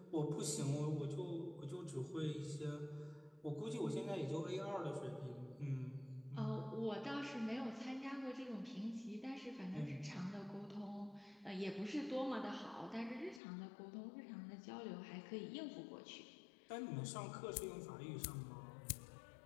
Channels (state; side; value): drops out; right; at 13.4 s